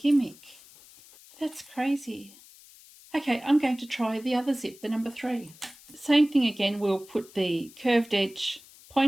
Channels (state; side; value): noise; left; hiss, 23 dB below the sound